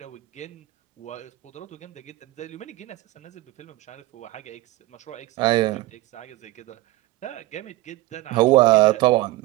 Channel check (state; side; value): quieter; left; 18.3 dB